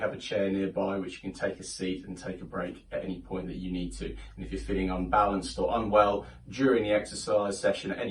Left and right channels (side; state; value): both; identical; correlation 1.00